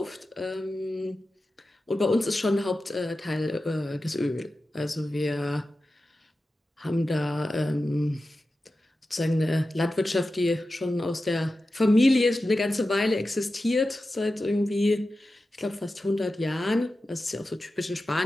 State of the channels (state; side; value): normal; both; correlation 0.93